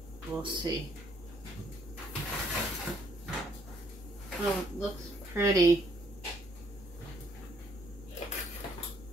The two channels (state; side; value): normal; both; correlation 0.67